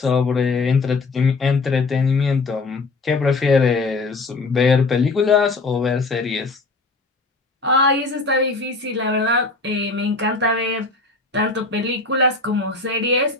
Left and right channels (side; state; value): right; quieter; 3.6 dB